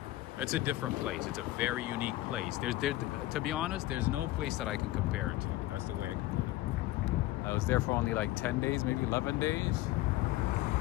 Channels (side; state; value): right; quieter; 16.8 dB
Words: It's a different place. It's a very unique place. To be honest, there's no place that I can compare it to. That's the way I can put it. I was there for only like 10 days, maybe 11 days.